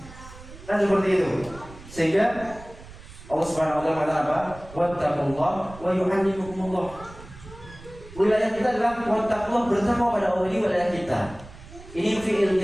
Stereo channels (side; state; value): right; noise; rumble, 17 dB below the sound